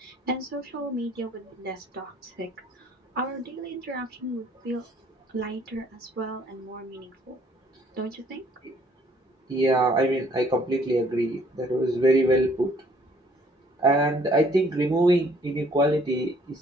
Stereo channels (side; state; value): both; normal; correlation 0.61